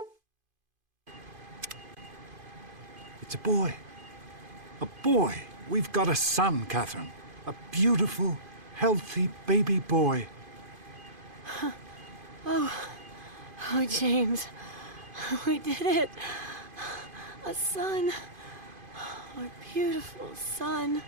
It's a boy. A boy. We've got a son, Catherine. A beautiful, healthy baby boy. Oh, James. We did it. A son. Our beautiful son.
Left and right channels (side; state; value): left; late; 2.5 ms